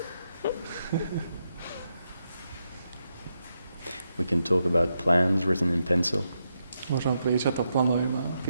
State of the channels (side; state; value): both; inverted; correlation -0.83